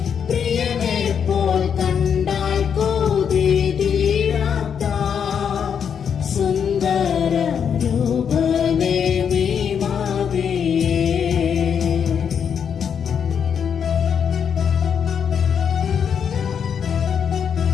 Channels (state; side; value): quieter; right; 7.5 dB